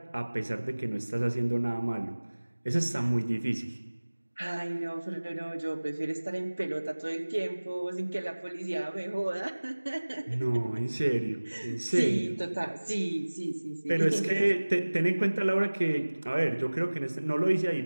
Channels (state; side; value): inverted; both; correlation -1.00